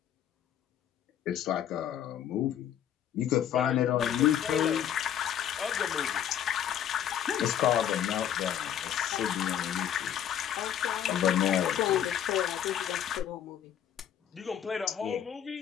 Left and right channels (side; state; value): right; quieter; 10.0 dB